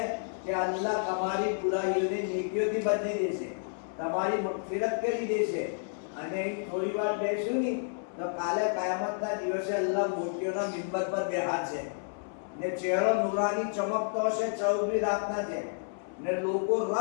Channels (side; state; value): right; silent; 57 dB below the other